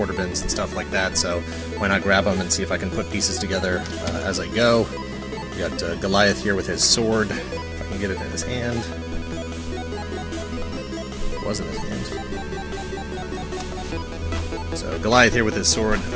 bins and stuff like that, so why not grab them and see if I can put pieces together as I go. We got Goliath here with his sword, if I can get it in his hand. It was in his hand. So Goliath here with his sword.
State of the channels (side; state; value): both; identical; correlation 1.00